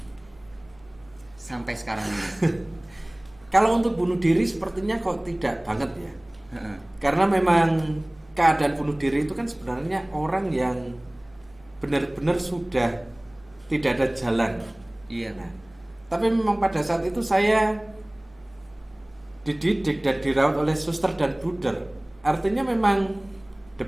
sampai sekarang ini? Kalau untuk bunuh diri sepertinya kok tidak banget ya. Heeh. Karena memang keadaan bunuh diri itu kan sebenarnya orang yang benar-benar sudah tidak ada jalan. Iya. Nah, tapi memang pada saat itu saya dididik dan dirawat oleh suster dan bruder. Artinya memang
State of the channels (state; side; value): noise; right; hum, 29 dB below the sound